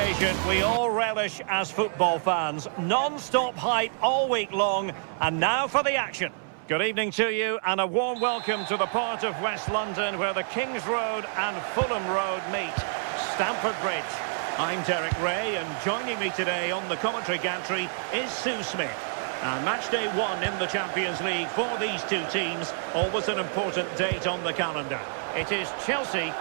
we all relish as football fans. Non-stop hype all week long, and now for the action. Good evening to you, and a warm welcome to the part of West London where the Kings Road and Fulham Road meet, Stamford Bridge. I'm Derek Ray, and joining me today on the commentary gantry is Sue Smith. And match day 1 in the Champions League for these two teams, always an important date on the calendar. It is Chelsea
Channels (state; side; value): silent; left; 60 dB below the other